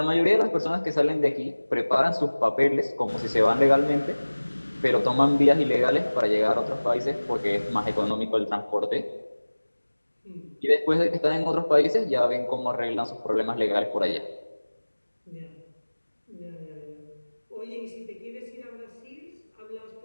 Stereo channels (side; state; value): both; inverted; correlation -1.00